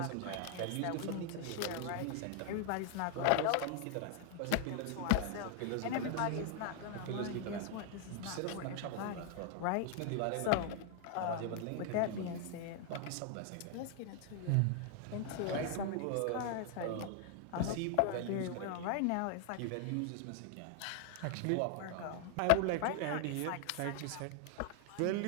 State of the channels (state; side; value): different; both; correlation 0.00